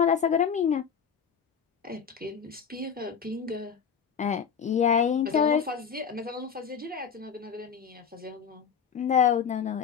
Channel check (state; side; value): quieter; right; 7.1 dB